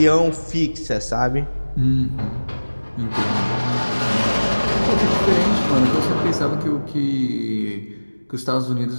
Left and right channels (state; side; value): inverted; both; correlation -1.00